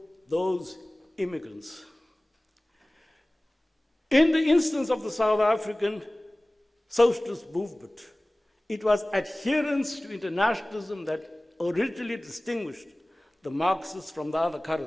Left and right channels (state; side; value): normal; both; correlation 0.98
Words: those immigrants. In the instance of the South African socialist movement, it was adherence to internationalism that originally distinguished the Marxists from the other